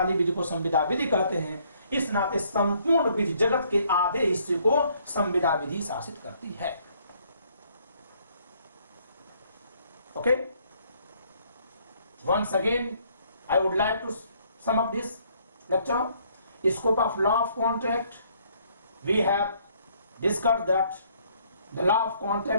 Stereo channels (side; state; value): both; inverted; correlation -0.66